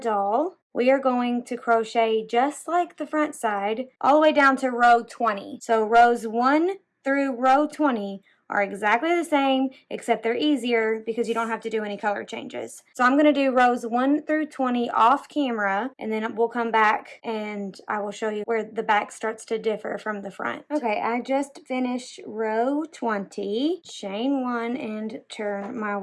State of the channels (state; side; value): identical; both; correlation 1.00